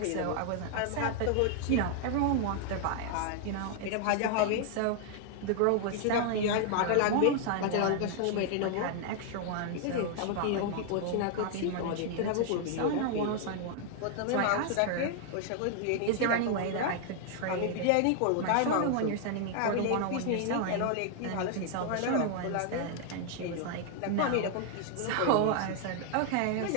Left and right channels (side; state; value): both; different; correlation 0.00